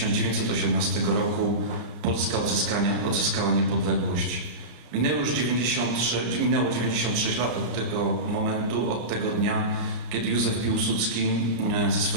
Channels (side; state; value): left; late; 33 ms